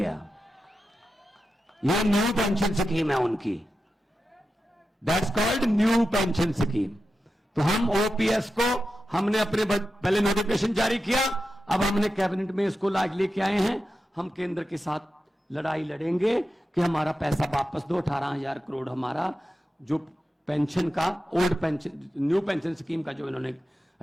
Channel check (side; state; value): both; normal; correlation 0.90